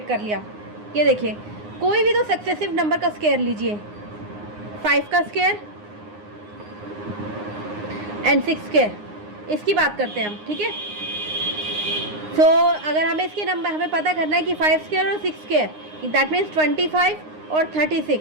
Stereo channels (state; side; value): late; left; 9.7 ms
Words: कर लिया? ये देखिए, कोई भी तो सक्सेसिव नंबर का स्क्वायर लीजिए। 5 का स्क्वायर एंड 6 स्क्वायर, इसकी बात करते हैं हम, ठीक है। सो अगर हमें इसके नंबर हमें पता करना है कि 5 स्क्वायर और 6 स्क्वायर, दैट मीन्स 25 और 36,